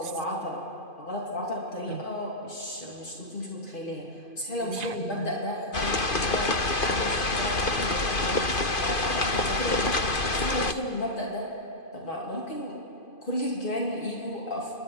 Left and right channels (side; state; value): right; late; 2.5 ms